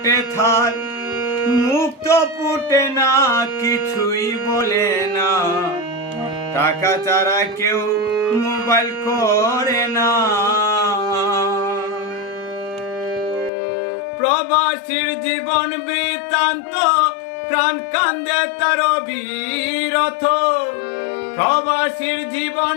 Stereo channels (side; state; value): right; drops out; at 13.5 s